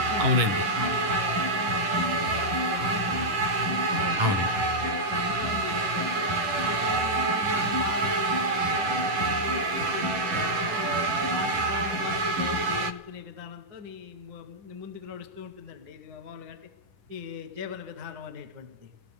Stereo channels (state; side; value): late; left; 10 ms